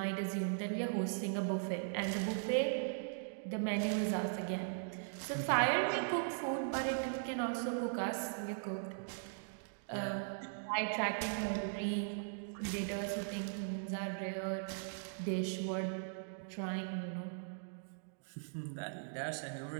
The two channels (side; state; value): left; silent; digital silence